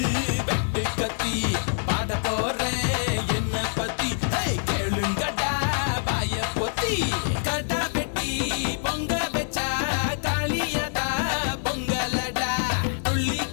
வெட்டு கத்தி பாட போறேன் என்ன பத்தி கேளுங்கடா வாய பொத்தி கடா வெட்டி பொங்க வச்சா காளியதா பொங்கலடா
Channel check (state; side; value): silent; right; 61 dB below the other